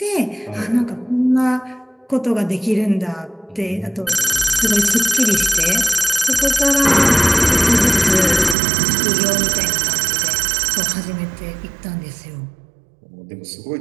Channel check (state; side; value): drops out; left; at 8.6 s